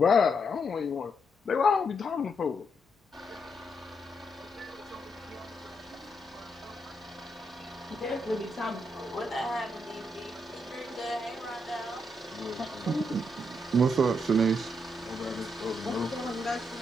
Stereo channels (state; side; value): normal; both; correlation 0.79